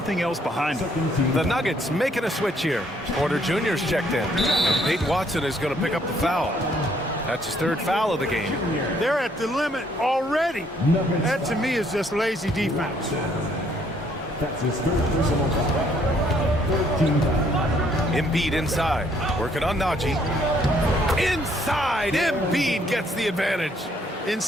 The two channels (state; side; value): normal; both; correlation 0.66